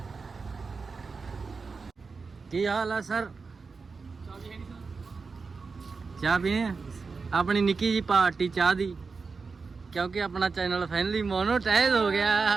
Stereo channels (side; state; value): left; quieter; 4.6 dB